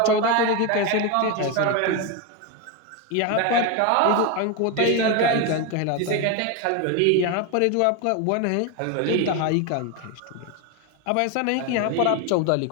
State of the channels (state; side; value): different; both; correlation 0.02